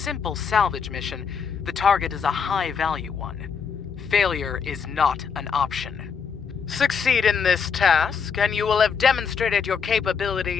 salvage mission, the target is a high-value one. Failure is not an option. Succeed in this task, and you will have demonstrated your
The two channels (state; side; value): quieter; right; 6.3 dB